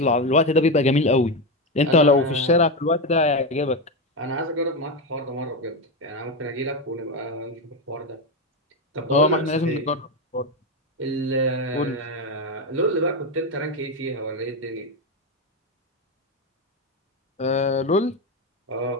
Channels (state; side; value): normal; both; correlation 0.12